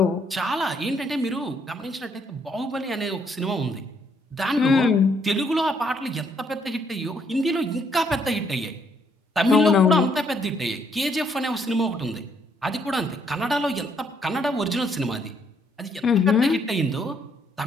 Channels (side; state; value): both; normal; correlation 0.70